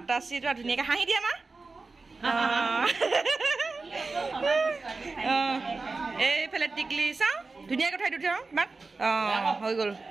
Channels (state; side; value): quieter; left; 3.8 dB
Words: ধুনীয়াকৈ হাঁহি দিয়ে আমাৰ এইফালে টিকলি চাওঁ ধুনীয়াকৈ থৈ দিওঁ মাক হৈ গ'ল